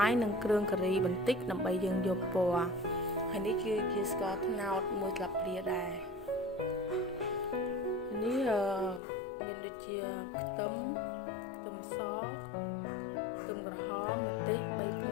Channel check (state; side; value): drops out; right; at 9.0 s